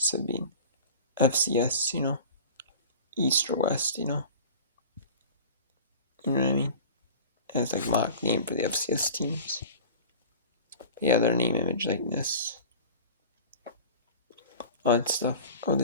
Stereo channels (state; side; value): inverted; both; correlation -0.38